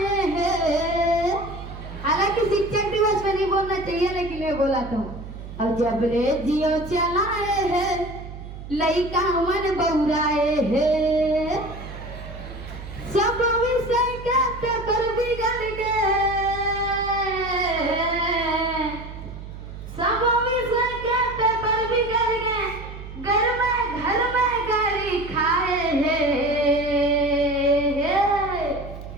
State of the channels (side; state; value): right; noise; hum, 12 dB below the sound